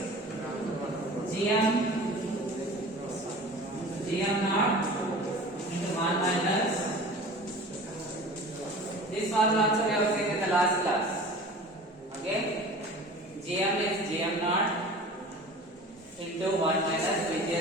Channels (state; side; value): normal; both; correlation 0.40